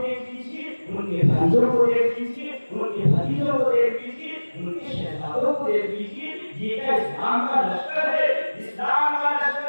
دیکھ لیجیے، ان کے بھائیوں کو دیکھ لیجیے، ان کے بھتیجوں کو دیکھ لیجیے، ان کے شہزادوں کو دیکھ لیجیے، یہ کیا اسلام کا لشکر ہے؟ اسلام کا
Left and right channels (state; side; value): inverted; both; correlation -1.00